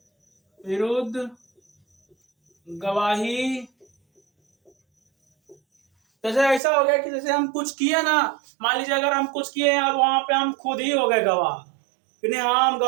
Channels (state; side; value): drops out; left; at 6.6 s